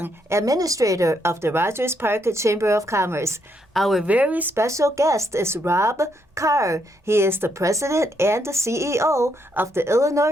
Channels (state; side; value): normal; both; correlation 0.76